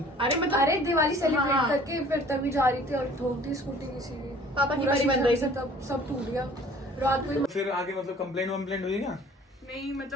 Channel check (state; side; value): normal; both; correlation 0.51